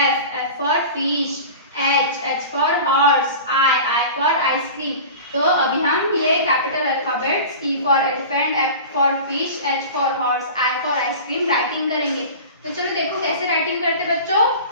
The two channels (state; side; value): inverted; both; correlation -0.35